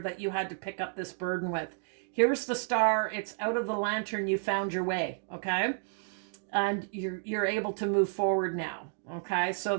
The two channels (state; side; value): silent; left; digital silence